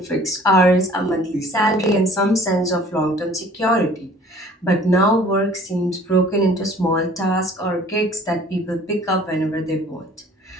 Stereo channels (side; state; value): both; normal; correlation 0.52